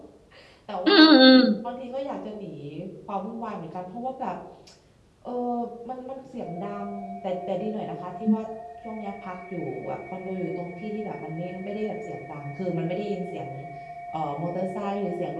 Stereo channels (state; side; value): identical; both; correlation 1.00